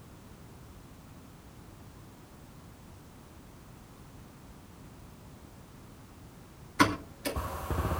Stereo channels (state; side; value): identical; both; correlation 1.00